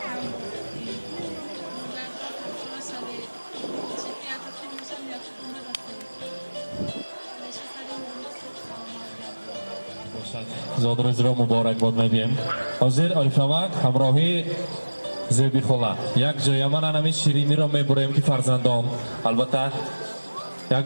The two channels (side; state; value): both; inverted; correlation -1.00